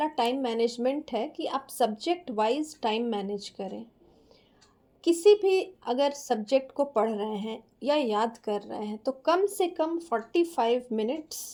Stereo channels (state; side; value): identical; both; correlation 1.00